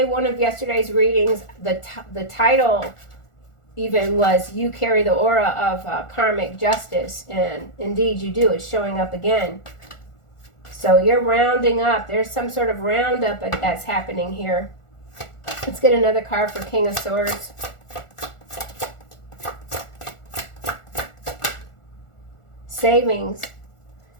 one of yesterday's readings, the title even was You Carry the Aura of Karmic Justice. And indeed you do. It's showing up again. So you're rounding up. There's some sort of roundup that's happening here. Let's get another card for King of Swords. Savings.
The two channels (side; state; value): right; late; 1.4 ms